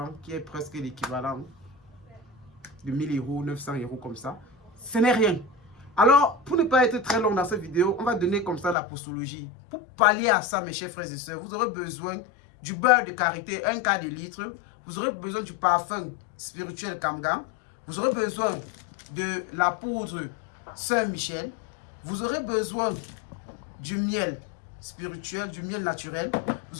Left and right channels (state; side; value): drops out; right; at 8.8 s